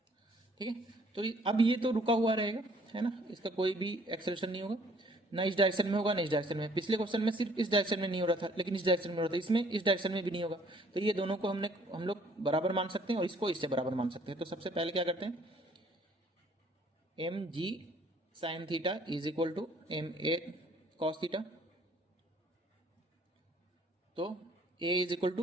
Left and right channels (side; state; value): both; normal; correlation 0.60